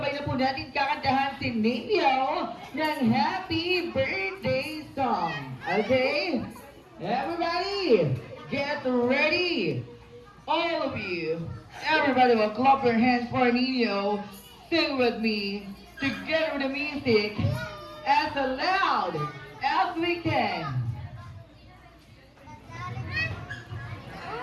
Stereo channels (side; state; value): both; identical; correlation 1.00